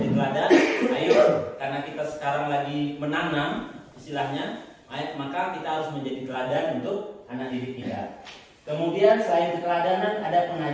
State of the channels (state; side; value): identical; both; correlation 1.00